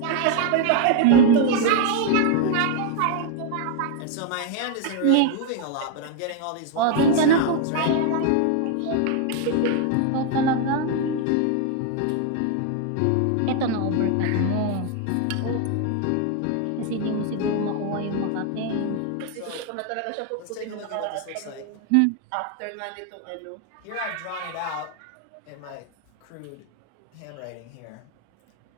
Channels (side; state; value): both; different; correlation 0.00